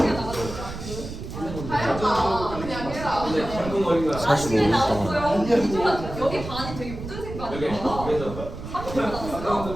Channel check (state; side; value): noise; right; rumble, 9 dB below the sound